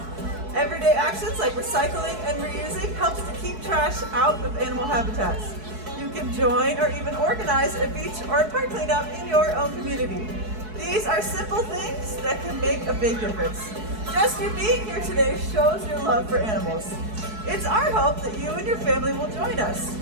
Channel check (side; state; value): left; late; 4.7 ms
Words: Everyday actions like recycling and reusing helps to keep trash out of animal habitats. You can join or even organize a beach or a park cleanup in your own community. These are simple things that can make a big difference. Just you being here today shows your love for animals. It's our hope that you and your family will join us